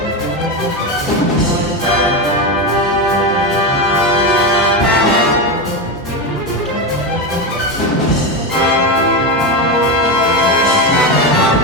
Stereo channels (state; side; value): normal; both; correlation 0.14